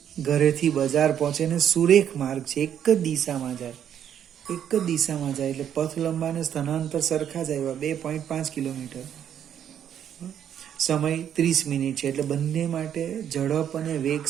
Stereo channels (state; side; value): quieter; left; 9.4 dB